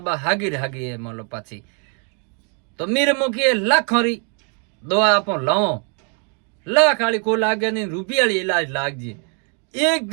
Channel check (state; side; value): quieter; left; 39.0 dB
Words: बा हागी है मान लो पाछी तो मेरे मुखी लाखों री दवा आप लाओ लाख वाली को लागे नहीं रुपया वाली इलाज लाग जी